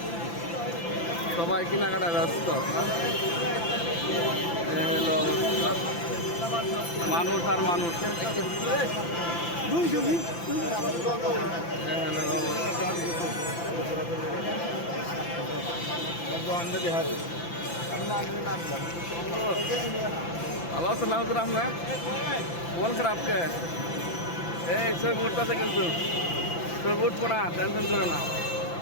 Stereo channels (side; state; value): right; late; 5.9 ms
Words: সবাই কেনাকাটা ব্যস্ত। হলো অবস্থা, মানুষ আর মানুষ। ভালো আছেন না হুজুর আপনার? মন খারাপ কে? এই ছবি উঠতেছে কিন্তু, ছবি উঠবো না, টেনশন করো না।